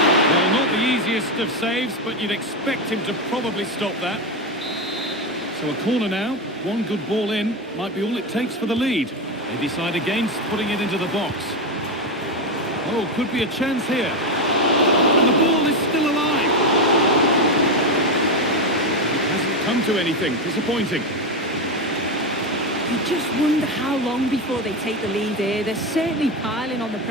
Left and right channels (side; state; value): both; normal; correlation 0.12